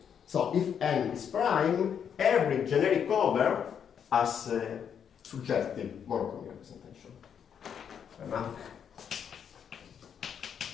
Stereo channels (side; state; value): right; quieter; 8.0 dB